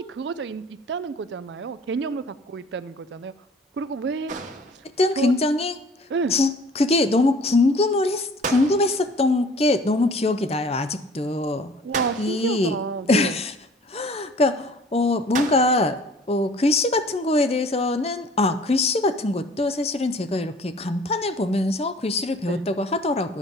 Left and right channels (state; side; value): normal; both; correlation 0.50